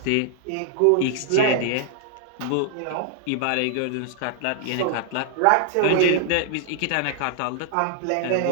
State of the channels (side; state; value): both; different; correlation 0.00